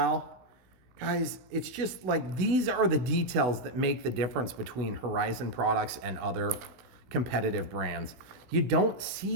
Guys, it's just like these are the details that make the difference between Horizon products and other competitive brands. You don't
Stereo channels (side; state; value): left; late; 16 ms